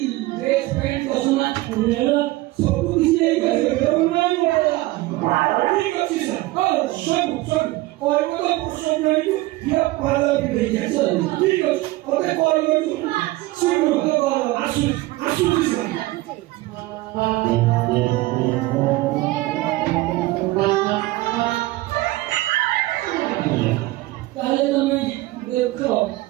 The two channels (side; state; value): left; quieter; 19.0 dB